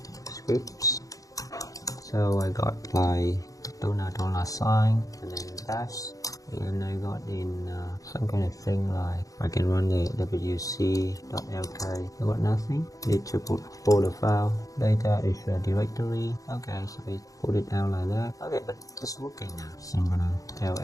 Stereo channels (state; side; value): late; right; 0.17 ms